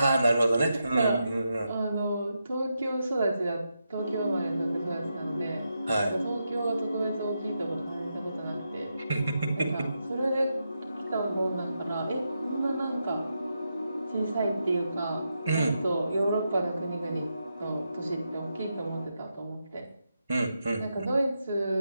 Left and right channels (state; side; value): inverted; both; correlation -0.86